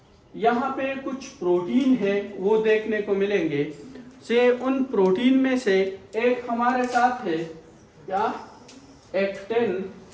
यहाँ पे कुछ प्रोटीन है वो देखने को मिलेंगे। से उन प्रोटीन में से एक हमारे साथ है क्या? एक्टिन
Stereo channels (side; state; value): both; identical; correlation 1.00